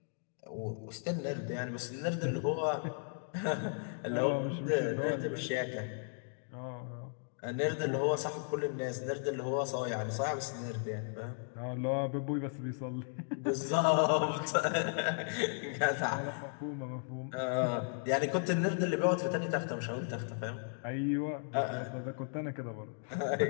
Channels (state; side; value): silent; right; digital silence